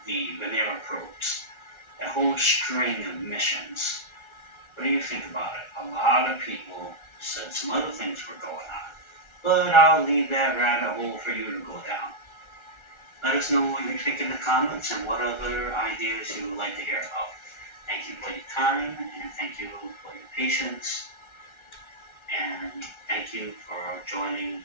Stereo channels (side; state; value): right; late; 1.4 ms